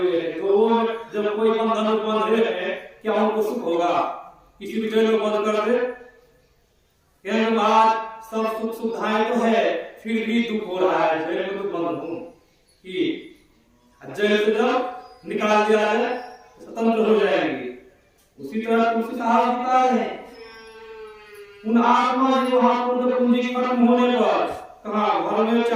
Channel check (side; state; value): both; identical; correlation 1.00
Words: हैं। तो वो जब कोई बंधन में बंधे हैं क्या उनको सुख होगा? किसी भी जेल में बंद कर दे, कहने बाद सब सुख सुविधाएं तो है, फिर भी दुख हो रहा है, जेल में तो बंद हूं कि जेल से जब निकाल दिया जाए स्वतंत्र हो जाएंगे। उसी तरह तुलसी साहब बता रहे हैं उन आत्मा जो वहां पर पूंजी खत्म होने पर कहा घर में